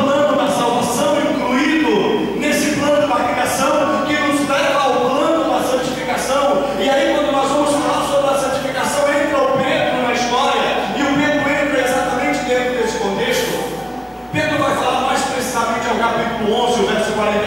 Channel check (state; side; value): identical; both; correlation 1.00